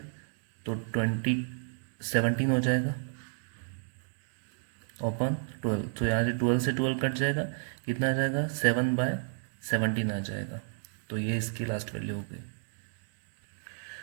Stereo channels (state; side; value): silent; left; digital silence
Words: तो 17 हो जाएगा ओपन 12। तो यहाँ से 12 कट जाएगा, कितना आ जाएगा 7/17 आ जाएगा। तो ये इसकी लास्ट वैल्यू हो गई।